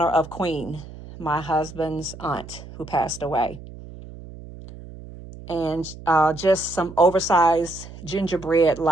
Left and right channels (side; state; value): right; noise; hum, 15 dB below the sound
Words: of Queen, my husband's aunt who passed away. And just some oversized